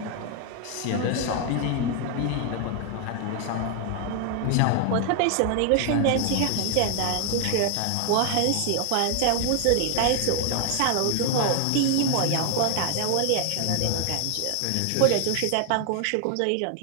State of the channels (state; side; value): different; both; correlation 0.00